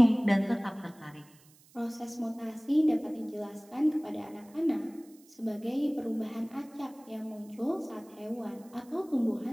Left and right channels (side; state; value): right; noise; hiss, 27 dB below the sound